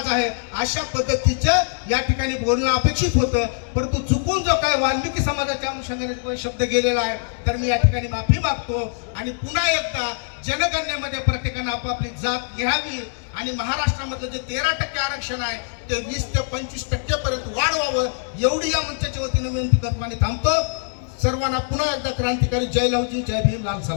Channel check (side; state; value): right; silent; digital silence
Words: आहे, अशा पद्धतीचं या ठिकाणी बोलणं अपेक्षित होतं. परंतु चुकून जो काय वाल्मिकी समाजाच्या अनुषंगाने शब्द गेलेला आहे तर मी या ठिकाणी माफी मागतो. आणि पुन्हा एकदा जनगणनेमध्ये प्रत्येकानं आपापली जात घ्यावी आणि महाराष्ट्रामधलं जे 13% आरक्षण आहे ते 20 ते 25% पर्यंत वाढवावं, एवढी या मंचाच्या वतीने विनंती करतो आणि थांबतो. सर्वांना पुन्हा एकदा क्रांतिकारी जय लवजी, जय भीम, लाल